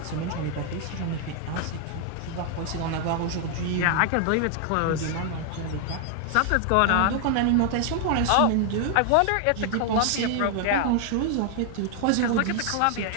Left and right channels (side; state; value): both; different; correlation 0.00